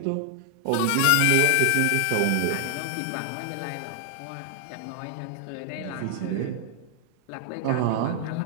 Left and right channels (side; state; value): both; different; correlation 0.00